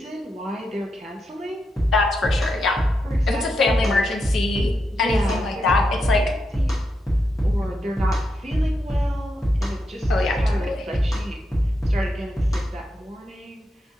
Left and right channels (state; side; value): normal; both; correlation 0.84